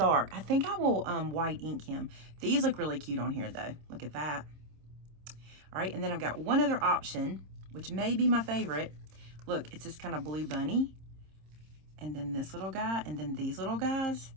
I think I will white ink him. These look really cute on here though. Look at that. All right, and then I've got one other option, which may be my favorite. Look, it's this kind of blue bunny. And then this little guy, and then these little guys.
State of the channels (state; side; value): late; left; 26 ms